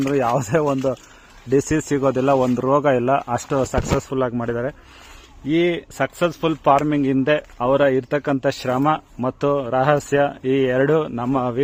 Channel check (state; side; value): identical; both; correlation 1.00